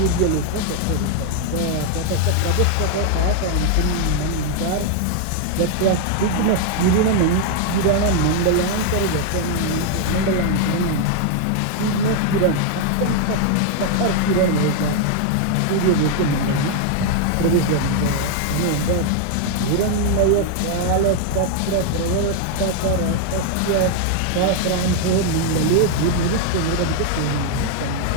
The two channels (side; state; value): both; different; correlation 0.00